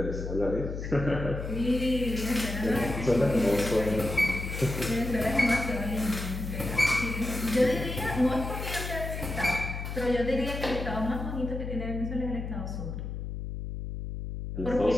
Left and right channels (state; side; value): noise; left; hum, 6 dB below the sound